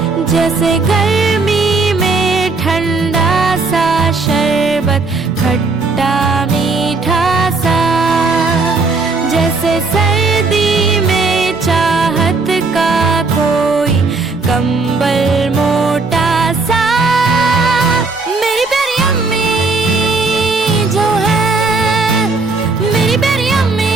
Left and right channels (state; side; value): quieter; left; 3.8 dB